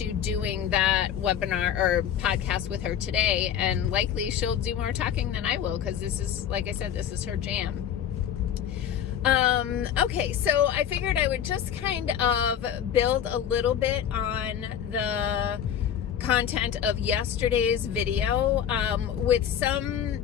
doing that webinar or podcast with her today, and likely she'll do more talking than I will, because this is, like I said, this is her jam. Okay, so I figured I would just kind of build a little bit on the content of yesterday's video, with some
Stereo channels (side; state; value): right; quieter; 9.4 dB